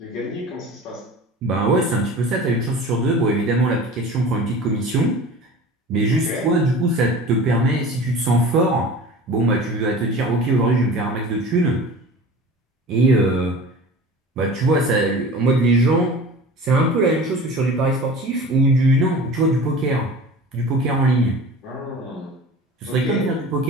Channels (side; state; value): both; normal; correlation 0.38